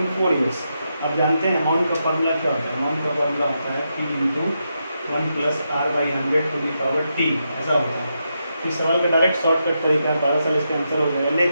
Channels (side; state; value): both; inverted; correlation -0.84